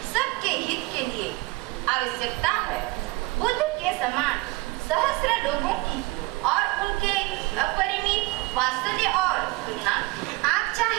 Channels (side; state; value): left; quieter; 22.9 dB